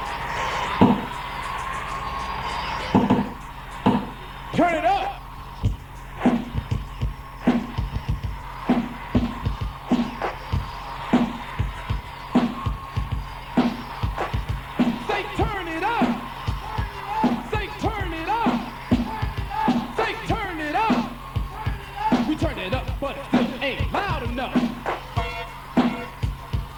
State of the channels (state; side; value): identical; both; correlation 1.00